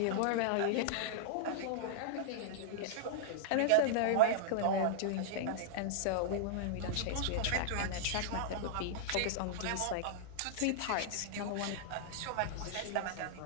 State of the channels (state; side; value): different; both; correlation -0.02